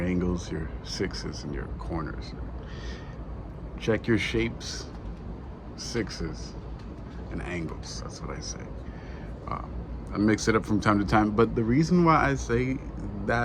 your sixes, and your corners. Check your shapes, sixes, and angles. That's what I say. I mix it up from time to time, but the reason why I say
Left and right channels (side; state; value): both; identical; correlation 1.00